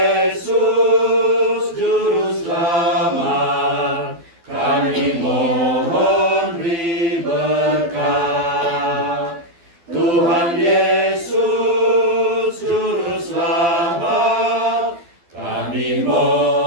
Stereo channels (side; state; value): left; late; 12 ms